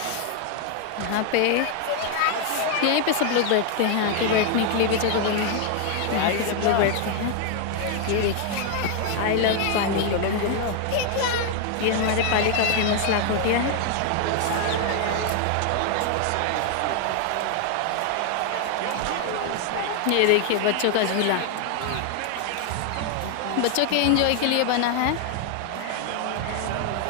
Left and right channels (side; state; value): both; different; correlation 0.00